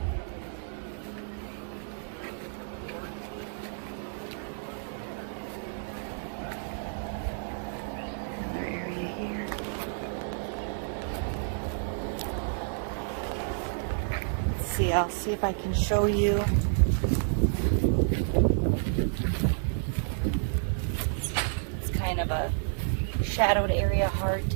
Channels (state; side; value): silent; left; digital silence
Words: I'll see if I can show you. It's kind of a shadowed area, hard